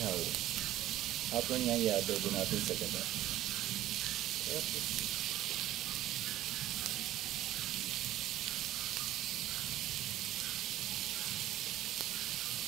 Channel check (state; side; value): quieter; left; 13.9 dB